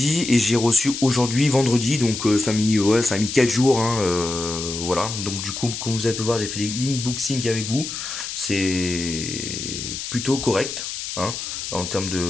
et j'ai reçu aujourd'hui, vendredi. Donc ça a mis 4 jours. Hein, voilà. Donc du coup, comme vous avez pu voir, j'ai fait l'inboxing avec vous. C'est plutôt correct. Hein, en termes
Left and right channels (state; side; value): noise; left; hiss, 6 dB below the sound